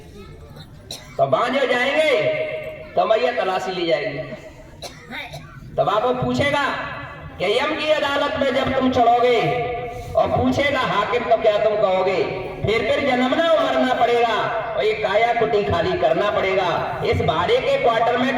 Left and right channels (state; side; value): identical; both; correlation 1.00